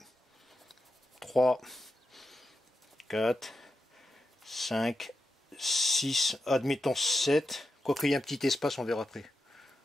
3, 4, 5, 6, admettons 7. Quoique il y ait un petit espace, on verra après.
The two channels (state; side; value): normal; both; correlation 0.87